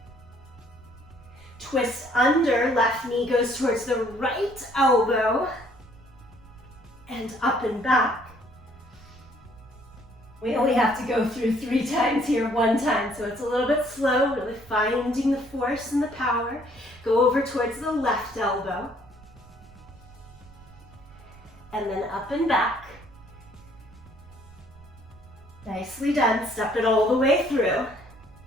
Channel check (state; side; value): noise; right; rumble, 22 dB below the sound